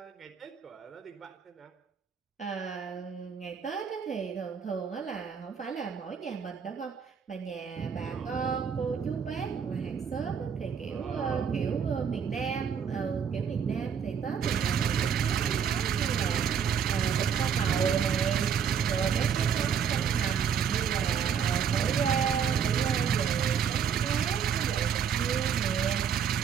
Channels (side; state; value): left; quieter; 7.4 dB